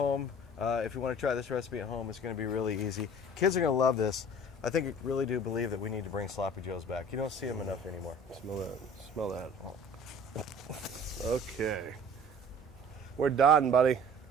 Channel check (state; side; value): normal; both; correlation 0.46